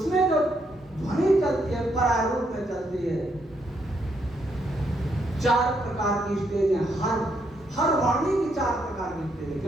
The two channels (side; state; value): both; normal; correlation 0.76